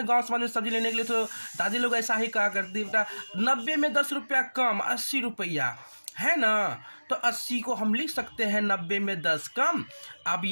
गांव समाज में सब्जी लेने के लिए, तो दादी लोग ऐसा ही कहा करती, बेटा 90 में 10 रुपया कम 80 रुपया, है ना। तो 80 को हम लिख सकते हैं 90 में 10 कम। अब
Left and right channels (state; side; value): inverted; both; correlation -1.00